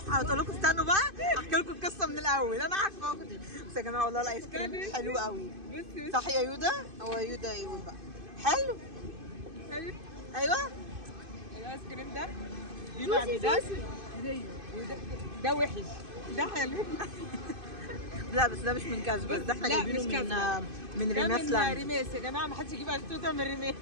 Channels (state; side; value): late; left; 2.5 ms